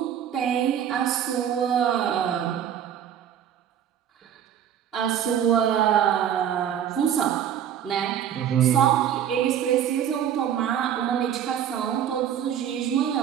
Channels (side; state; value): left; quieter; 9.5 dB